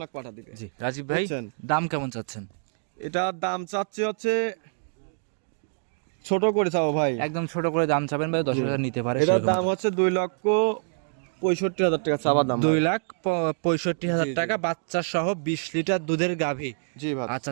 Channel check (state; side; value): silent; left; digital silence